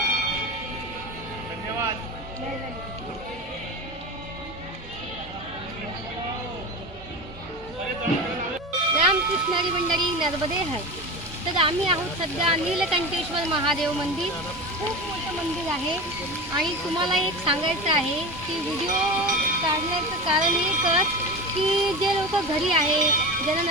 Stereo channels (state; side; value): normal; both; correlation 0.27